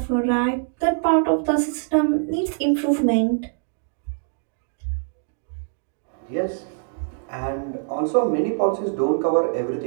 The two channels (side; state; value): left; silent; digital silence